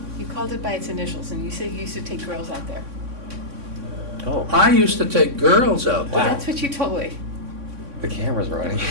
You called it by its initials, and you said you used to take girls out there. Oh, I used to take girls out Well, there. that's what you told me. the camera's running.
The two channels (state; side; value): late; left; 3.6 ms